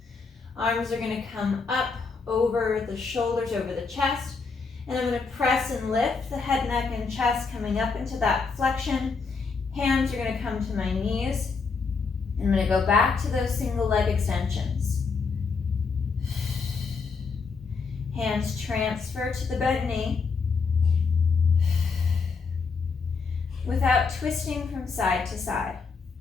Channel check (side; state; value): right; quieter; 4.8 dB